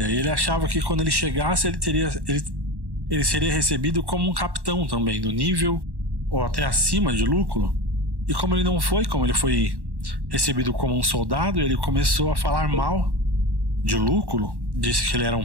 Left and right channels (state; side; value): late; left; 1.1 ms